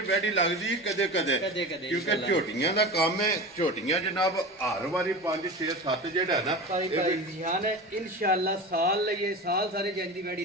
ਵੈੜੀ ਲੱਗਦੀ ਕਦੇ ਕਦੇ ਕਿਉਂਕਿ ਝੋਟੀਆਂ ਦਾ ਕੰਮ ਹੈ। ਝੋਟੀਆਂ ਜਨਾਬ ਹਰ ਵਾਰੀ 5 6 7 ਜਿਹੜਾ ਨਾ ਇਨਸ਼ਾਅੱਲਾ ਸਾਲ ਲਈਏ ਸਾਲ ਸਾਰੇ ਜੰਜ ਦੀ ਵੈੜੀ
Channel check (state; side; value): normal; both; correlation 0.29